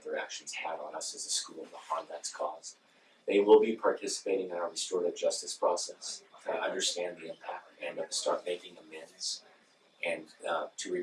their actions had on us as a school and the harm that's caused. They will be participating in our restorative justice process to understand the impact and to start making amends and to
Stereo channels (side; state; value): both; identical; correlation 1.00